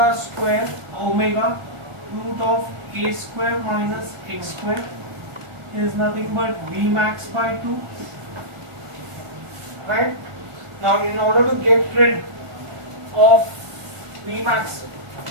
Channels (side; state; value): left; late; 1.5 ms